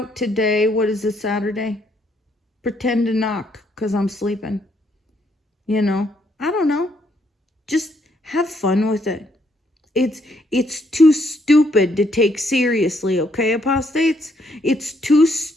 today. What is it, Saturday? Pretend to knock because I'm sleeping. You know, I don't know. Just have fun with it. It's too stupid to take seriously, okay, apostates? It's too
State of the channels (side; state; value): both; normal; correlation 0.72